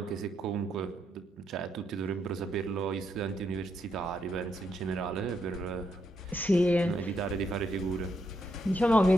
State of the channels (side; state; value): both; normal; correlation 0.79